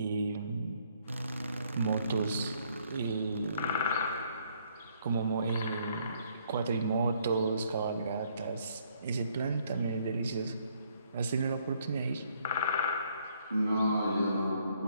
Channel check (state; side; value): inverted; both; correlation -0.68